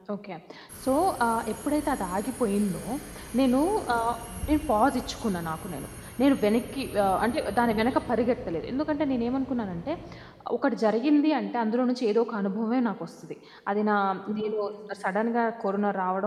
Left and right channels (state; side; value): identical; both; correlation 1.00